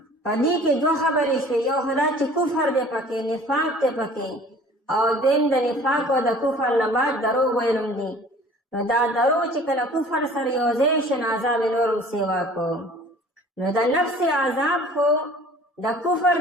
په دې کې دوه خبرې شوې یو خو دا چې کفر دی پکې نفاق دی پکې او دویم د نفاق او د کفر نه بعد دروغ ویل هم دي نو دا دروغ چې کله کفر سره یو ځای شي نو عذاب یې نور هم سیوا کو نو د نفس عذاب خو د کفر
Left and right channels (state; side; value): normal; both; correlation 0.48